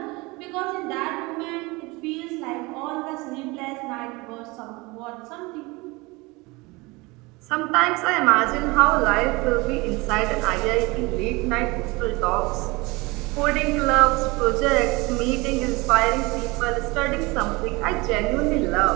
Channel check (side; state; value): left; quieter; 24.1 dB